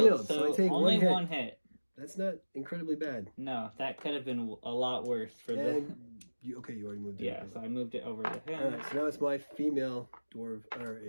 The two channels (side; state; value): both; inverted; correlation -1.00